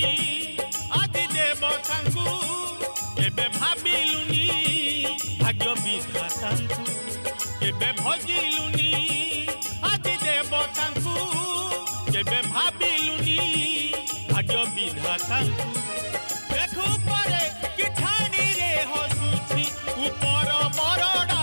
আদি দেবতাঙ্কু এবে ভাবিলুনি ভাগ্য বিধাতাঙ্কু এবে ভজিলুনি আদি দেবতাঙ্কু এবে ভাবিলুনি ভাগ্য বিধাতাঙ্কু দেখু পরে কি ঠানি রে হসুছি উপর বরডা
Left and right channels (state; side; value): inverted; both; correlation -1.00